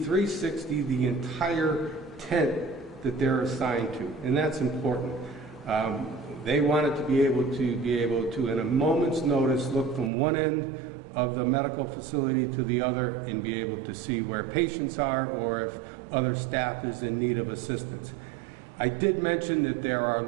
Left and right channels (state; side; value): drops out; left; at 10.1 s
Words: the entire tent that they're assigned to, and that's important. They wanted to be able to, in a moment's notice, look from one end of the medical facility to the other and be able to see where patients are or if other staff is in need of assistance. I did mention that there are